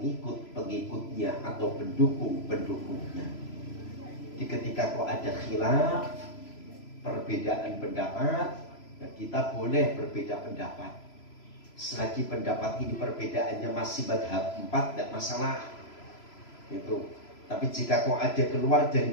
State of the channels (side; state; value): right; late; 3.0 ms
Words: atau pendukung-pendukungnya. Jadi ketika kok ada khilaf, perbedaan pendapat, kita boleh berbeda pendapat. Selagi pendapat ini perbedaannya masih madhab 4, tidak masalah. Itu. Tapi jika kok ada keluar dari